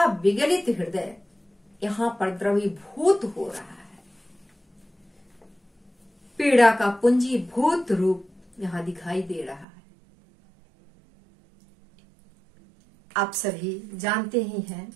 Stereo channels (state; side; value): drops out; left; at 9.7 s